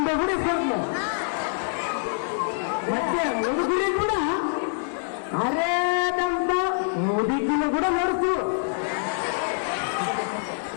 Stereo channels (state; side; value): silent; right; digital silence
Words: ಕೂಡ ಇಸ್ಕೊಡ್ತ, ಮತ್ತೆ ಮುದುಕಿ ಕೂಡ ಅರೇದಂತ ಮುದುಕಿನ ಕೂಡ ನಡೆಸು